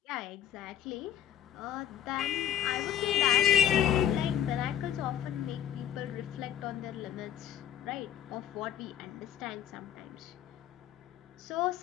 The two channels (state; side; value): quieter; right; 10.4 dB